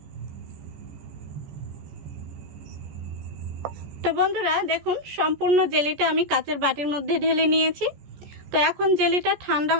তো বন্ধুরা দেখুন সম্পূর্ণ জেলিটা আমি কাচের বাটির মধ্যে ঢেলে নিয়েছি। তো এখন জেলিটা ঠান্ডা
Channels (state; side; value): late; left; 14 ms